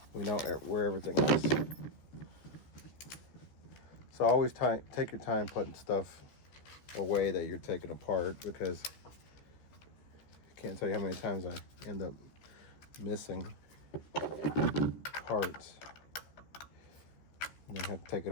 we know where everything is. So always take your time putting stuff away that you're taking apart, because I can't tell you how many times I end up missing parts and then have to take it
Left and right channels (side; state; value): right; late; 14 ms